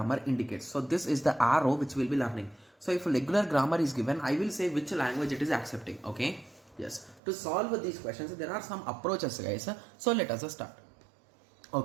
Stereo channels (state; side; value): drops out; left; at 7.2 s